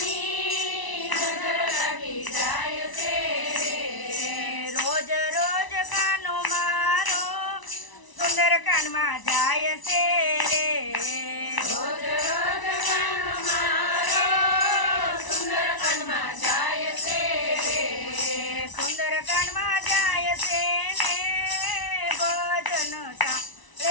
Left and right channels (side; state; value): right; late; 1.0 ms